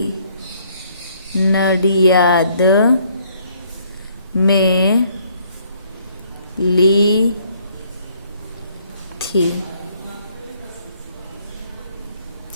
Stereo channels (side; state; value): both; inverted; correlation -0.65